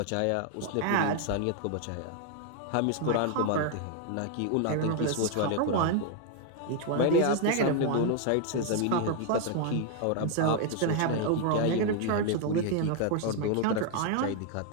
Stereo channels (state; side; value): different; both; correlation 0.00